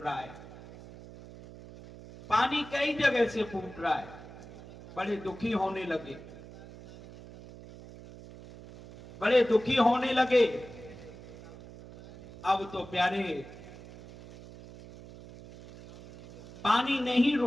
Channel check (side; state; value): right; noise; hum, 17 dB below the sound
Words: है, पानी कई जगह से फूट रहा है। बड़े दुखी होने लगे, बड़े दुखी होने लगे। अब तो प्यारे पानी नहीं